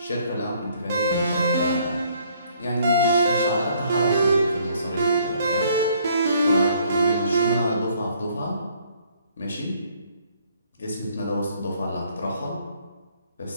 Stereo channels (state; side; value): inverted; both; correlation -0.63